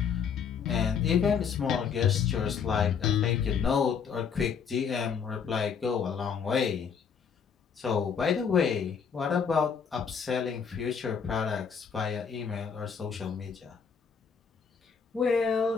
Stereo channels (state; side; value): quieter; right; 6.6 dB